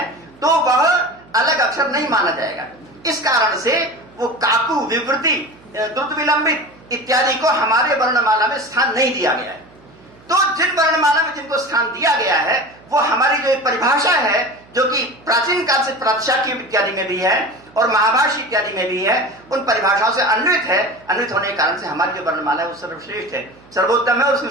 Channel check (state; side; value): noise; right; hum, 26 dB below the sound